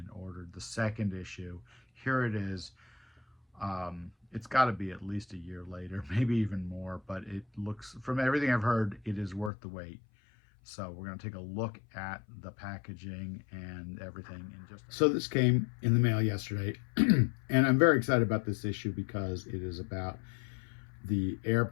ordered the second issue. Here it is. It's got to be at least a year later, maybe even more, but it looks, from everything I've heard, it is worth the wait. So we're going to take a look at the packaging and everything in just. So this came in the mail yesterday, and I'm very excited about this issue because it is about the Air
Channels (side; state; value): right; drops out; at 9.5 s